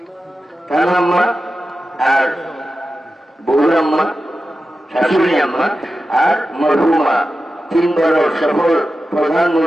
तान अम्मा और बउर अम्मा शाশুড়ি अम्मा और मरहुमा तीन बार सफल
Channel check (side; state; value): both; normal; correlation 0.92